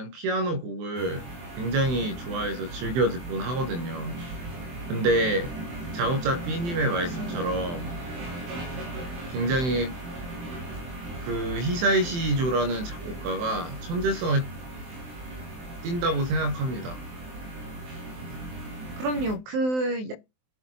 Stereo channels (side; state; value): left; late; 23 ms